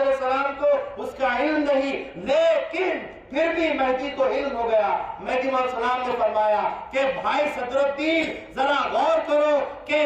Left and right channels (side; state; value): both; identical; correlation 1.00